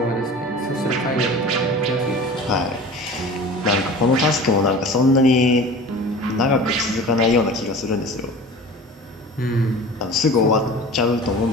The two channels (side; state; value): both; normal; correlation 0.39